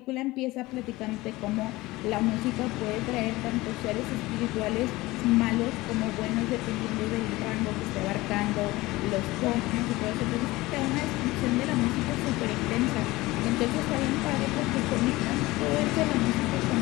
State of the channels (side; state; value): right; quieter; 19.7 dB